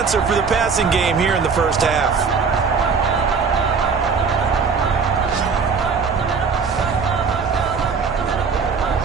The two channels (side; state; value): left; quieter; 5.4 dB